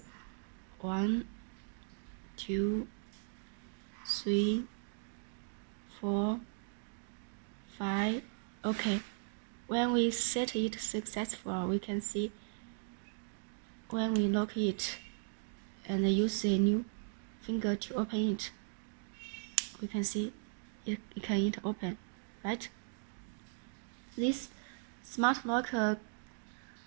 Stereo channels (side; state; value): left; silent; digital silence